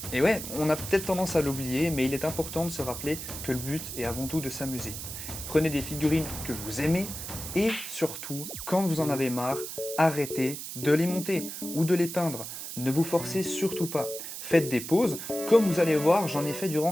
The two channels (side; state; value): right; noise; hiss, 8 dB below the sound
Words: Et ouais, on a peut-être tendance à l'oublier, mais il est important de se rappeler que le but est avant tout de s'amuser. Prenez des figurines que vous aimez, et surtout, quand vous en avez marre, arrêtez de les monter ou de les peindre. Ne vous forcez surtout pas. Faites des pauses, comme vous allez voir, j'en ai fait